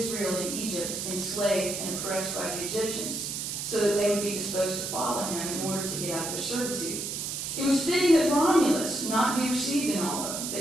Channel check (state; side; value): noise; right; hiss, 4 dB below the sound